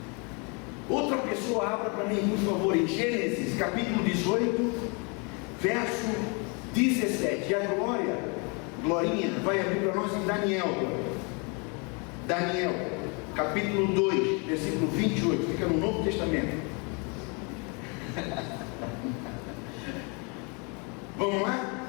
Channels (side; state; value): right; quieter; 33.1 dB